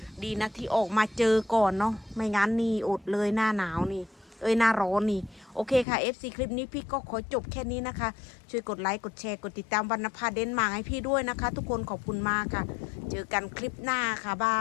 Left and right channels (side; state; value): right; drops out; at 5.9 s